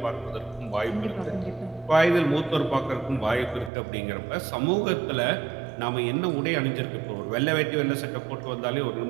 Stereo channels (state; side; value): drops out; left; at 3.7 s